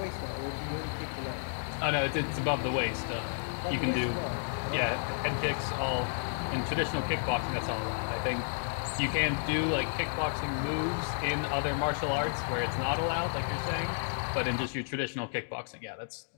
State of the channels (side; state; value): right; silent; digital silence